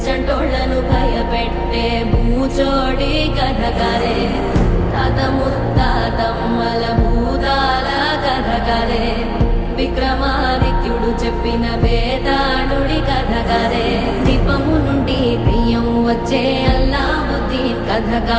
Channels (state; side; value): identical; both; correlation 1.00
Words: చంటోళ్లను భయపెట్టే భూచోడి కథ కదే తాత ముత్తాతమ్మల భూతాల కథ కదే విక్రమాదిత్యుడు చెప్పిన వేదాళుడి కథ కదే దీపము నుండి దెయ్యం వచ్చే అల్లావుద్దీన్ కథ